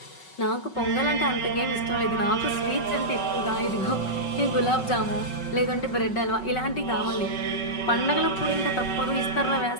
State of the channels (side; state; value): right; late; 5.4 ms